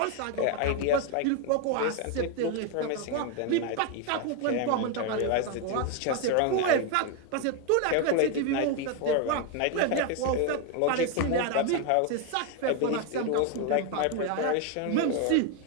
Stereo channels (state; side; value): different; both; correlation 0.01